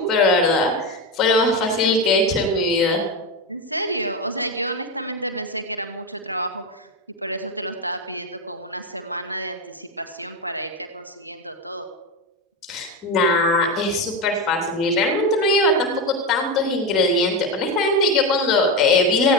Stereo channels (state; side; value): normal; both; correlation 0.14